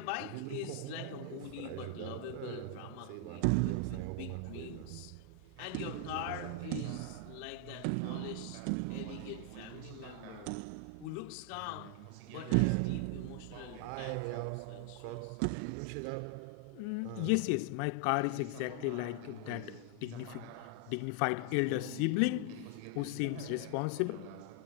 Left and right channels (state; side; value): different; both; correlation 0.00